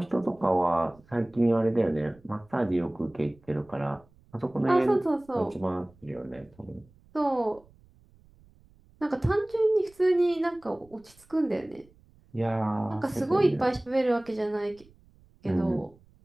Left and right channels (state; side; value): noise; right; rumble, 29 dB below the sound